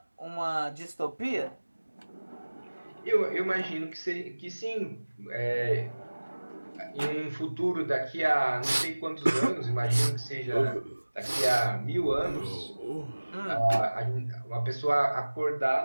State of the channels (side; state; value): both; inverted; correlation -1.00